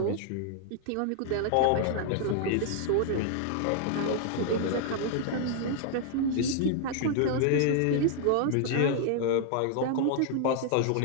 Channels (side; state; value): both; different; correlation 0.00